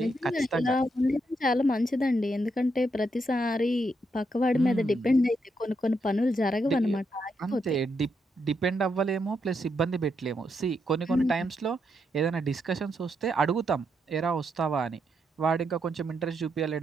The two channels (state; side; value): normal; both; correlation 0.80